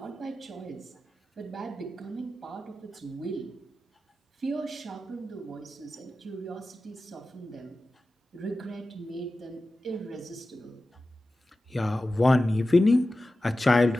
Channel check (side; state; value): both; normal; correlation 0.94